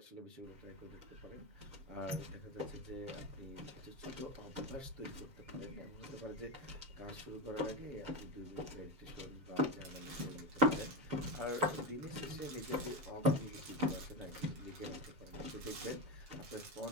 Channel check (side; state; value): left; late; 7.5 ms